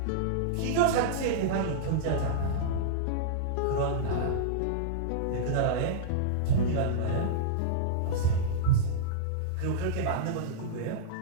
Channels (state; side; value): different; both; correlation -0.03